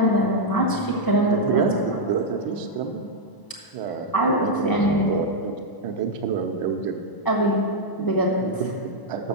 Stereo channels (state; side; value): late; right; 1.0 ms